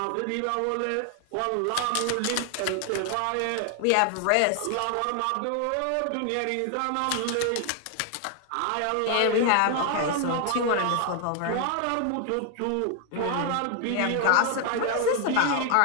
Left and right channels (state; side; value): different; both; correlation 0.00